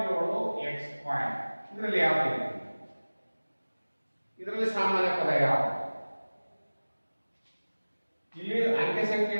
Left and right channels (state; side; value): inverted; both; correlation -1.00